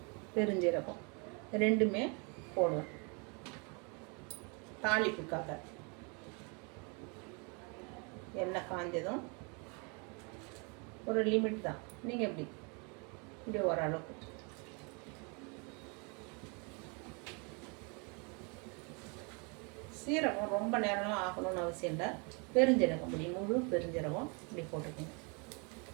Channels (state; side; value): quieter; left; 33.5 dB